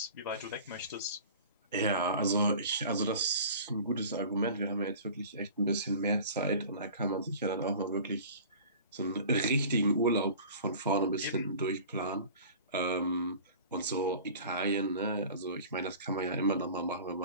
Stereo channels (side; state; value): both; inverted; correlation -0.42